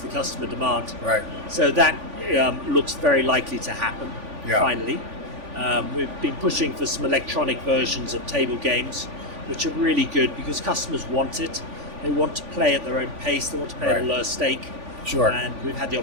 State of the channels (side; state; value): left; late; 3.5 ms